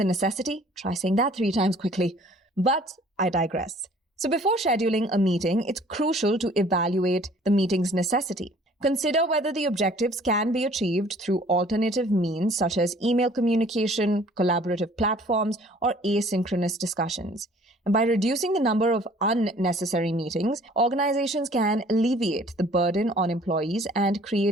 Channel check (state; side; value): normal; both; correlation 0.54